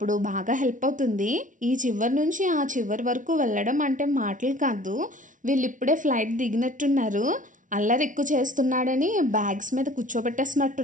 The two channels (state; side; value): late; left; 0.37 ms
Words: బాగా హెల్ప్ అవుతుంది. ఈ చివరి నుంచి ఆ చివరి వరకు వెళ్ళడం అంటే మాటలు కాదు. వీళ్ళు ఇప్పుడే ఫ్లైట్ దిగినట్టున్నారు. అల్లరి ఎక్కువ చేస్తున్నాడని బ్యాగ్స్ మీద